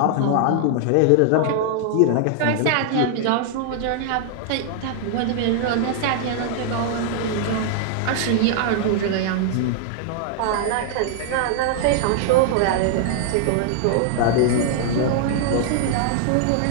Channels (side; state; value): both; different; correlation 0.00